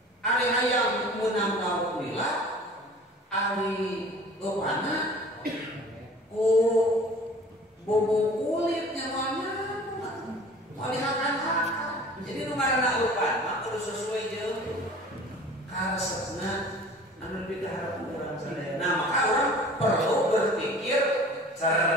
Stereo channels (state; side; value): normal; both; correlation 0.45